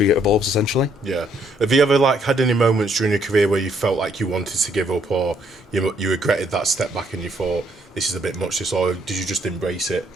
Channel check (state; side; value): normal; both; correlation 0.69